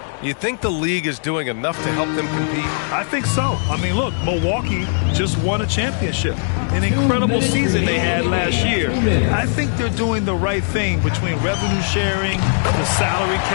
You think the league is doing enough to help them compete? I think so. I mean, look, Milwaukee just won a championship. An incredible season they had last year. I think they're doing the right thing between revenue sharing, the salary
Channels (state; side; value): silent; right; digital silence